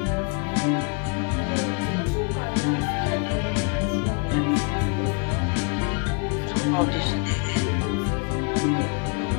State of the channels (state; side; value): quieter; right; 33.3 dB